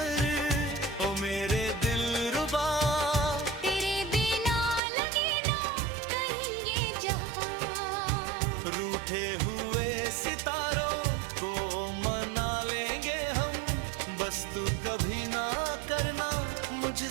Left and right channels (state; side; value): drops out; left; at 4.8 s